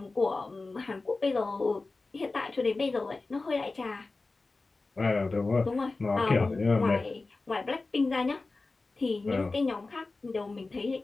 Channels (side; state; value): right; quieter; 3.5 dB